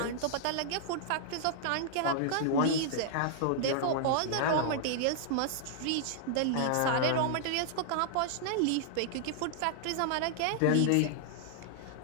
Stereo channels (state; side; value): different; both; correlation -0.01